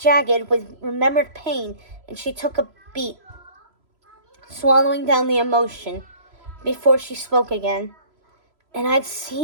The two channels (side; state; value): left; late; 3.0 ms